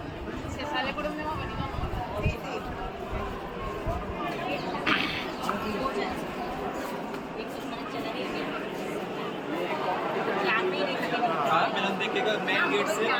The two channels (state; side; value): identical; both; correlation 1.00